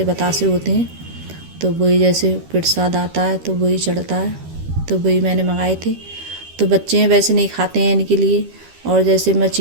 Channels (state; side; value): late; left; 13 ms